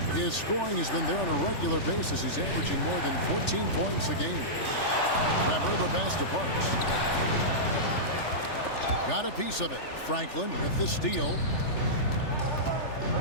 His scoring has been there on a regular basis. He's averaging more than 14 points a game. Weber, the pass to Parks. Got a piece of it. Franklin with the steal.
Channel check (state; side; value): late; right; 3.4 ms